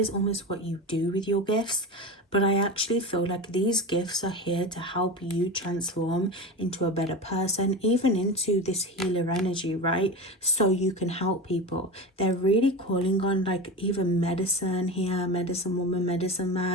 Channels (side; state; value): both; normal; correlation 0.25